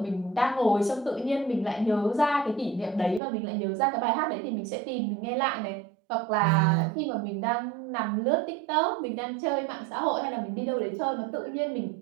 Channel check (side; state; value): left; drops out; at 3.2 s